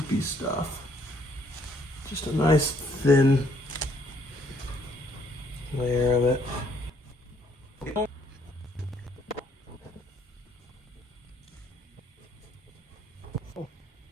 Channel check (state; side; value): normal; both; correlation 0.66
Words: stuff. Just a nice thin layer of it. All